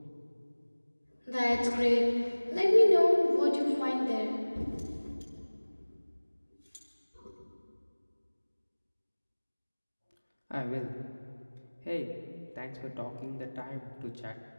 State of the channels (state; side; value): inverted; both; correlation -1.00